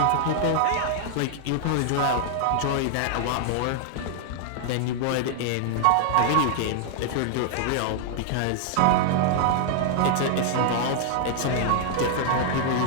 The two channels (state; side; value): different; both; correlation -0.01